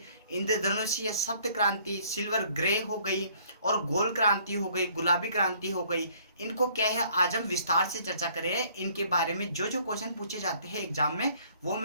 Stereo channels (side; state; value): both; inverted; correlation -0.59